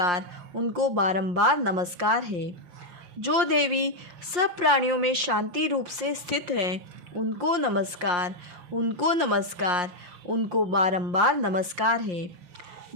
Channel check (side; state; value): left; late; 5.7 ms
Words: उनको बारंबार नमस्कार है। जो देवी सब प्राणियों में शांति रूप से स्थित है, उनको नमस्कार, उनको नमस्कार, उनको बारंबार नमस्कार है।